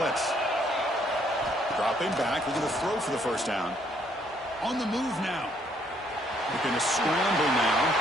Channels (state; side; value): normal; both; correlation 0.68